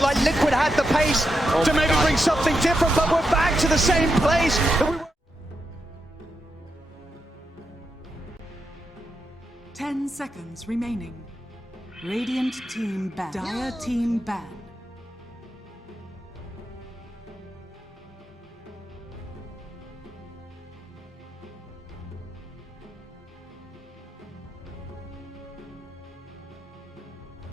like Liquid had the pace to maybe bring something different, but we're back to the same place that we were. 10 seconds remaining. Radiant team ban. Dire team ban.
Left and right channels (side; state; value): both; normal; correlation 0.85